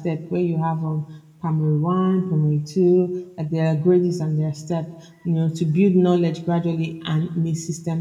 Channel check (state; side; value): identical; both; correlation 1.00